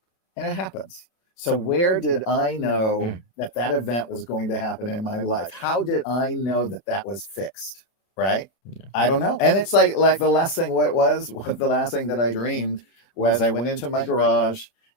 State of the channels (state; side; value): late; right; 30 ms